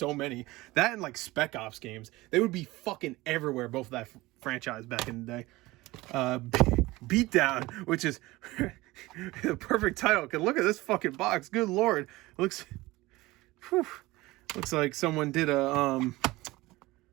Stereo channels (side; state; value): left; quieter; 19.9 dB